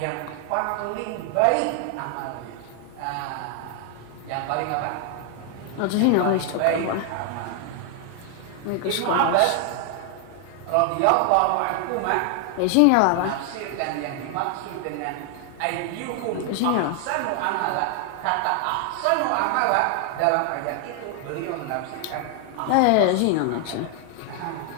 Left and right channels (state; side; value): different; both; correlation 0.00